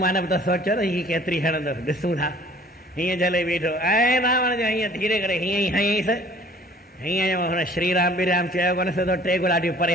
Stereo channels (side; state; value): both; normal; correlation 0.52